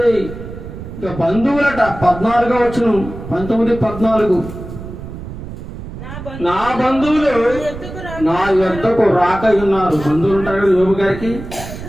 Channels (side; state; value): right; noise; rumble, 11 dB below the sound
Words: ఇక బంధువులట 14వ వచనం, 19:14. నా బంధువులు నా యొద్దకు రాక ఉన్నారు. బంధువులు ఉంటారు కదా యోబు గారికి.